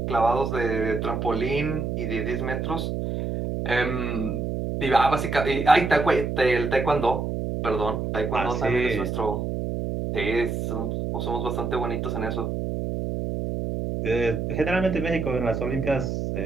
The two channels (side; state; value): right; noise; hum, 2 dB below the sound